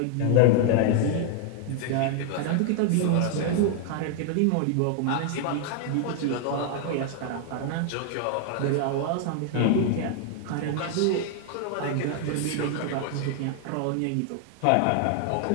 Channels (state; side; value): different; both; correlation 0.00